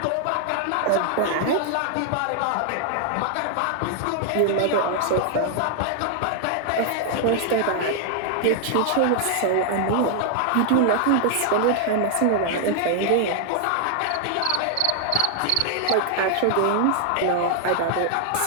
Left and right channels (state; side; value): different; both; correlation 0.00